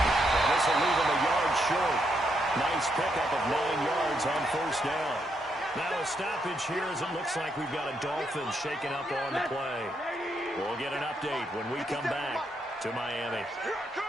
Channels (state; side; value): normal; both; correlation 0.78